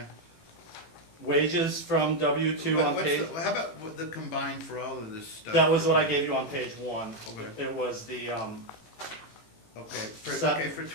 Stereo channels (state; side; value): late; right; 18 ms